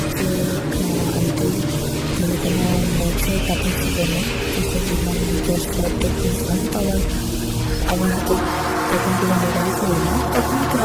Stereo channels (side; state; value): both; identical; correlation 1.00